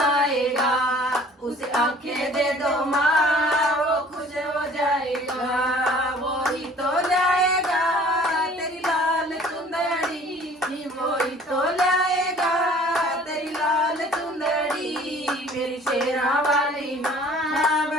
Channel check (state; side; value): normal; both; correlation 0.51